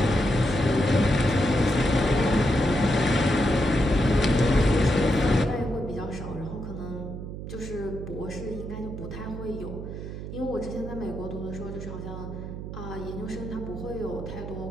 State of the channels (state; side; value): noise; right; hum, 8 dB below the sound